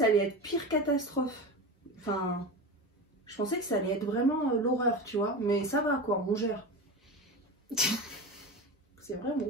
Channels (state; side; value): normal; both; correlation 0.25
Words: allait être pire catastrophe. Enfin, je pensais que ça allait être vraiment l'horreur, tu vois. Mais ça va, quoi, on gère. C'est vrai,